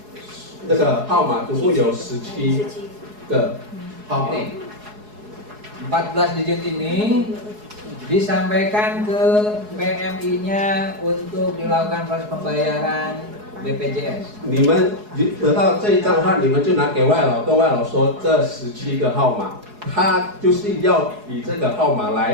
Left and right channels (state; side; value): late; left; 4.7 ms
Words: 那个号码，总共有17个号码。 14 digit ini disampaikan ke PMI-nya untuk dilakukan proses pembayaran BPJS. 你们得到这一张的话，你们就拿给外劳，跟外劳说这17个号码。 他就是要以这个号码